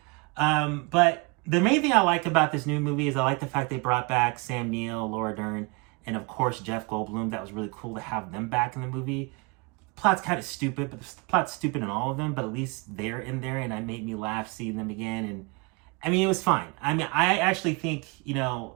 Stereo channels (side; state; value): left; quieter; 29.4 dB